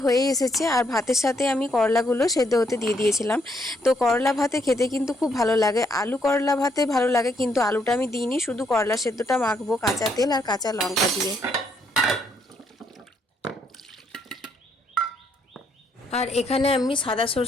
হয়ে এসেছে, আর ভাতের সাথে আমি করলাগুলো সেদ্ধ হতে দিয়ে দিয়েছিলাম। তো করলা ভাতে খেতে কিন্তু খুব ভালো লাগে, আলু করলা ভাতে ভালো লাগে, কিন্তু আলুটা আমি দিইনি, শুধু করলা সেদ্ধটা মাখবো কাঁচা তেল আর কাঁচা লঙ্কা দিয়ে। আর এখানে আমি সাদা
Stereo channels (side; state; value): both; normal; correlation 0.73